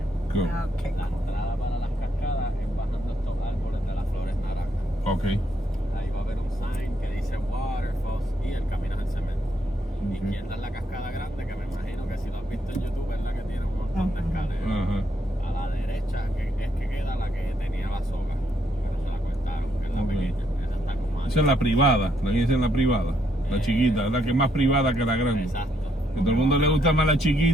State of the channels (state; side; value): normal; both; correlation 0.74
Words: Cool. Okay. La entrada para las cascadas es bajando estos árboles de las flores naranjas. Ok. Ahí va a haber un sign que dice Waterfall y el camino es en cemento. Ok. Izquierda es la cascada grande, que me imagino que si lo has visto en YouTube es la que tiene un montón de escaleras. Ajá. A la derecha es que queda la que tenía la soga, pero se la cortaron, que es la Ok. pequeña. Esa está como Esa es la privada, la que dicen la privada. La chiquita, la que es más privada que la grande. Exacto. A todo el mundo le gusta más la